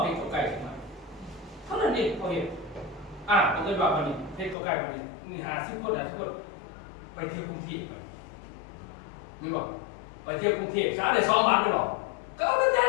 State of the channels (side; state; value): right; drops out; at 4.5 s